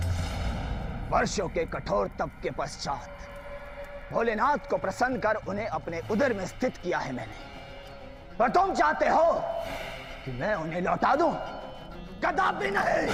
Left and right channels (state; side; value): identical; both; correlation 1.00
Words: वर्षों के कठोर तप के पश्चात भोलेनाथ को प्रसन्न कर उन्हें अपने उदर में स्थित किया है मैंने। पर तुम चाहते हो कि मैं उन्हें लौटा दूं? कदापि नहीं।